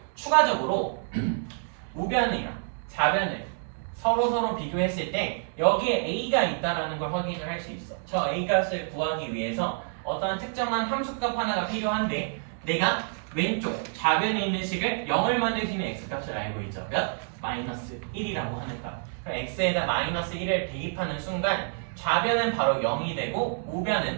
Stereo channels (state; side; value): silent; left; 59 dB below the other